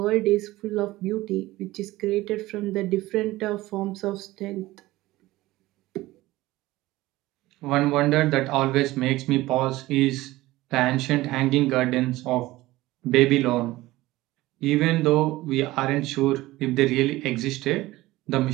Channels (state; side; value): quieter; left; 18.0 dB